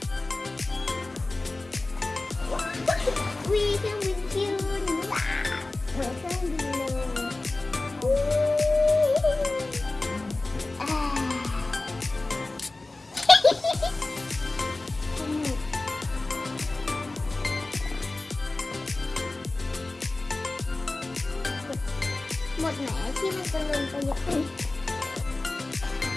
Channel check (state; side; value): quieter; right; 3.1 dB